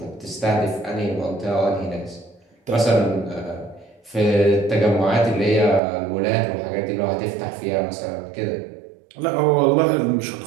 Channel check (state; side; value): drops out; left; at 5.8 s